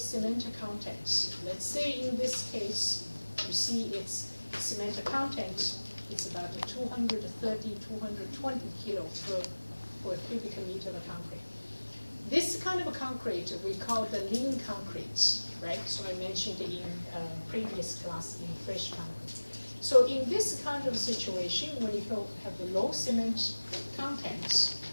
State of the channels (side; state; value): both; inverted; correlation -1.00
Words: content. Let's say in this case, you see its cement content is about 230, 220 kilo per cubic meter of concrete. This kind of concrete we call the lean concrete, right? So I mentioned in previous class in fresh concrete. So in this kind of situation, when you have the low cement content,